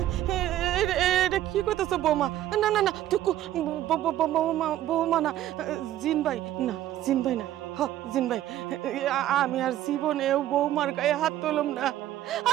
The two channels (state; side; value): quieter; left; 13.0 dB